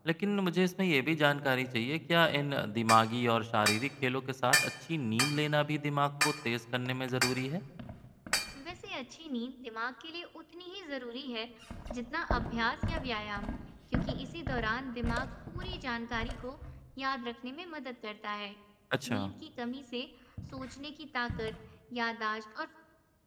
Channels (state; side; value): identical; both; correlation 1.00